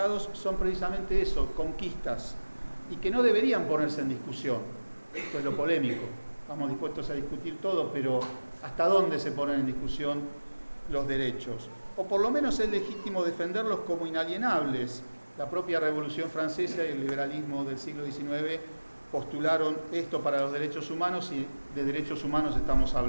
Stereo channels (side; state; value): both; inverted; correlation -1.00